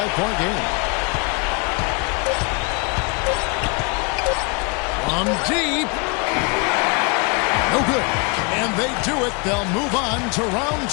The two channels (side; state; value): right; quieter; 32.3 dB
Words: game. From deep. No good. And they do it. They'll move on to round